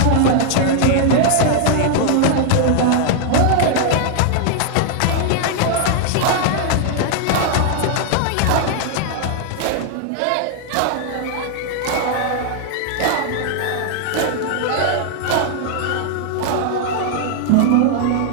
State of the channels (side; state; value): both; different; correlation 0.00